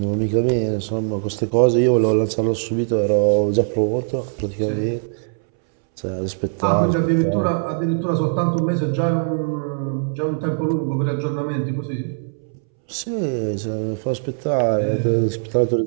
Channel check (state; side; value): silent; left; 65 dB below the other